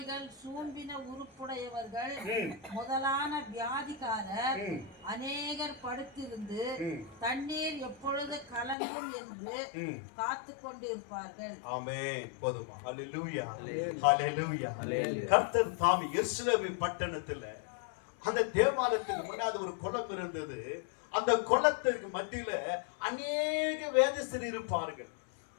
சூம்பின உறுப்புடையவர்கள் முதலான வியாதிக்காரர் அநேகர் படுத்திருந்து தண்ணீர் எப்பொழுது கலங்கும் என்று காத்து கொண்டிருப்பார்கள். ஆமென். போதுமா? ஹல்லேலூயா, ஹல்லேலூயா. கர்த்தர் தாமே எருசலேம் பட்டணத்துல அந்த தேவாலயத்துக்கு முன்னாடி ஒரு குளம் இருந்தது. அந்த குளத்திற்கு மத்தியில அநேக வேதஸ்தர் இருப்பார்கள்.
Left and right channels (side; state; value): right; drops out; at 8.8 s